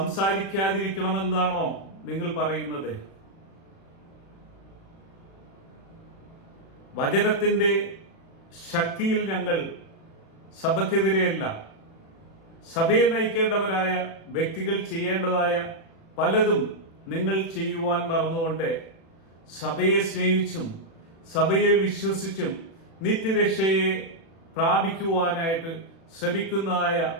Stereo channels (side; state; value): right; late; 36 ms